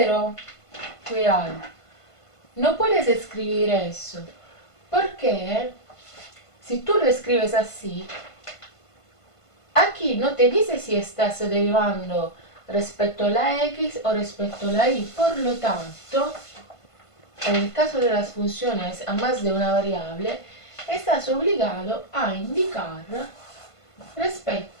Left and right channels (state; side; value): late; right; 1.5 ms